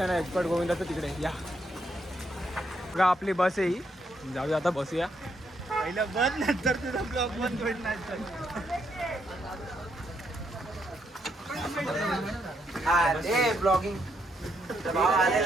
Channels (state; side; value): normal; both; correlation 0.76